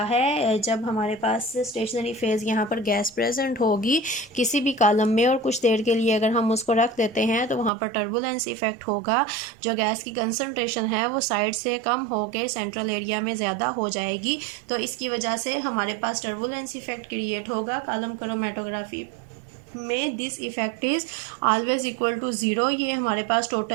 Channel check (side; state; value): left; drops out; at 7.7 s